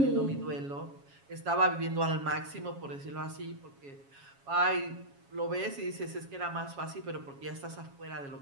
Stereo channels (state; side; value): late; left; 7.2 ms